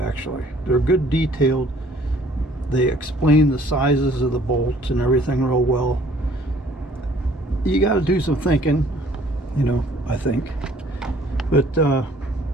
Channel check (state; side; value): normal; both; correlation 0.57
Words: They're good detailed. They explain the sizes of the bolts and everything real well. You got to do some thinking, you know, I think. But I